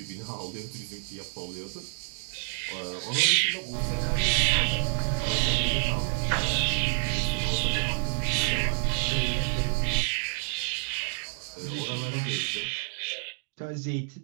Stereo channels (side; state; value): left; silent; 59 dB below the other